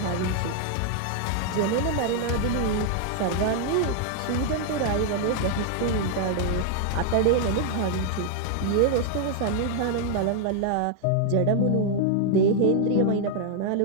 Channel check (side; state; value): both; different; correlation 0.00